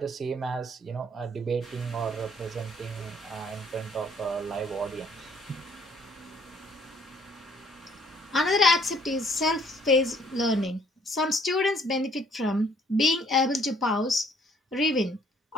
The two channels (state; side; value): normal; both; correlation 0.62